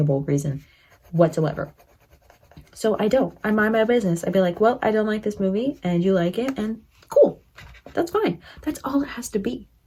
reason whatsoever. So I mind my business. I'd be like, well, I don't like this movie and you like it, and cool, that's fine. That's all it has to be.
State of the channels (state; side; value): identical; both; correlation 1.00